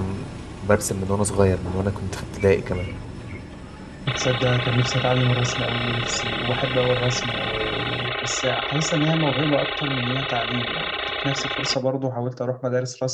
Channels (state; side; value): identical; both; correlation 1.00